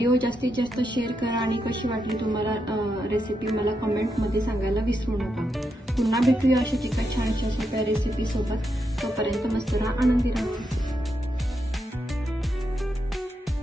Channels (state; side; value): normal; both; correlation 0.83